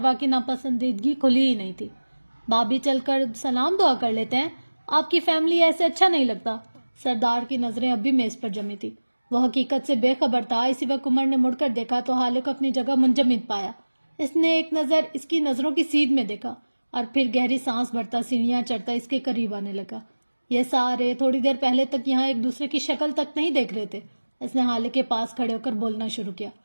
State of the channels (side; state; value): both; inverted; correlation -1.00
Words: کی ناپسندیدگی کھلی ہی نہیں تھی۔ بھابھی چل کر سلام دعا کر لیتے ہیں، آپ کی فیملی ایسے اچھا نہیں لگتا۔ سردار کی نظریں اب بھی میز پر جمی تھی، وہ حقیقت سے بے خبر تھا۔ اسی وقت عمر نے مڑ کر دیکھا تو حالے کو اپنی جگہ منجمد پایا۔ اس نے ایک نظر اس کی نظروں کی سیدھ میں دیکھا اور پھر گہری سانس بھرتا سینیاں چڑھتا اس کے قریب آنے لگا۔ یہ سارے تھوڑی دیر پہلے تک یہاں ایک دوسرے کی شکل تک نہیں دیکھ رہے تھے۔ اس نے حالے کے پاس کھڑے ہو کر بولنا شروع کیا۔